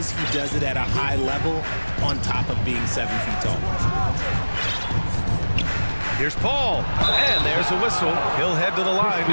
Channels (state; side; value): inverted; both; correlation -1.00